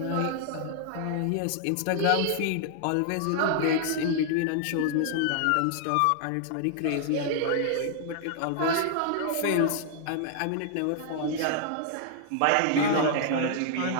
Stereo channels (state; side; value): different; both; correlation -0.01